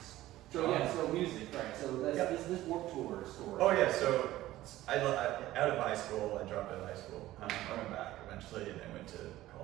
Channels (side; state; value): left; quieter; 15.5 dB